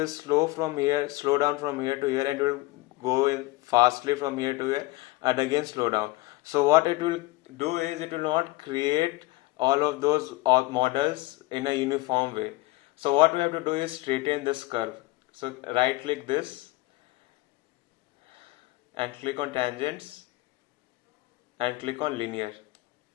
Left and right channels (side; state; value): right; quieter; 20.5 dB